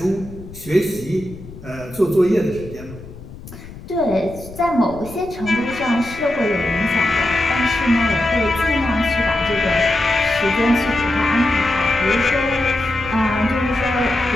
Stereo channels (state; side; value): noise; left; rumble, 16 dB below the sound